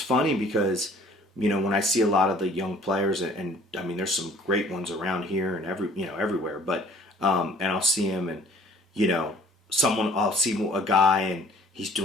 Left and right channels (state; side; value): normal; both; correlation 0.54